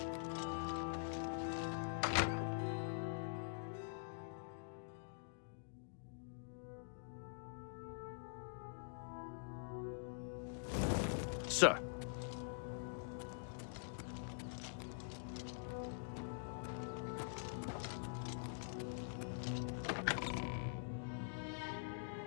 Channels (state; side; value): silent; right; digital silence